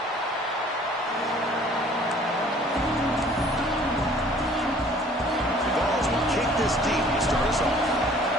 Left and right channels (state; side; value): normal; both; correlation 0.54